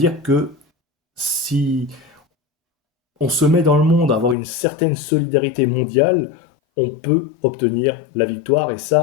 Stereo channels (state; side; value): drops out; right; at 4.4 s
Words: que si on se met dans le monde à avoir une certaine solidarité mondiale, on peut obtenir la victoire, et